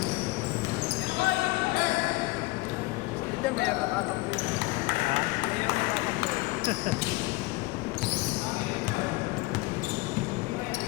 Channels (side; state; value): right; quieter; 22.8 dB